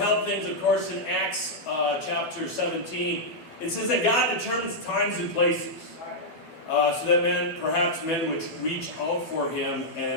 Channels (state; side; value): late; right; 13 ms